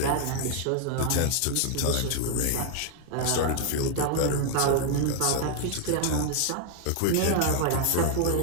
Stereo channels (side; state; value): both; different; correlation 0.00